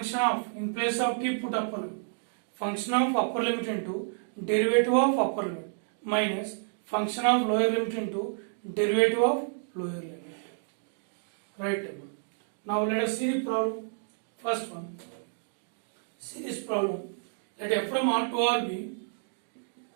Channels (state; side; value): silent; left; digital silence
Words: of, in place of t put upper limit. Function of upper limit into derivative of upper limit minus function of lower limit into derivative of lower limit. Right. Now let us see the problem. First one. See this problem. Let f from R to R be,